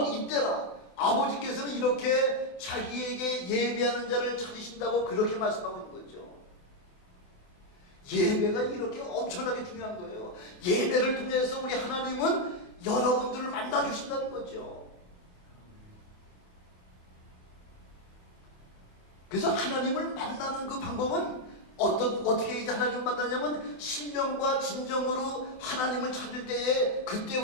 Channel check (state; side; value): late; right; 28 ms